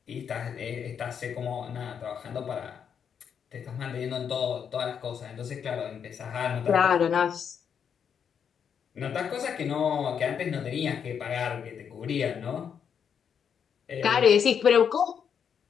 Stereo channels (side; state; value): right; quieter; 7.5 dB